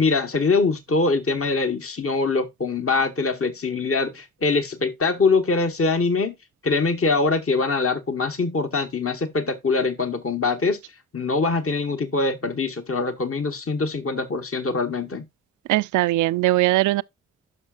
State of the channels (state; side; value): normal; both; correlation 0.20